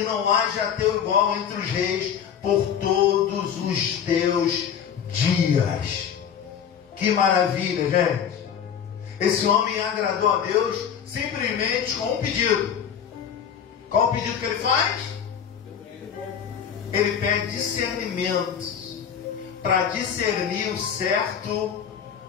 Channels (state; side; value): quieter; right; 8.1 dB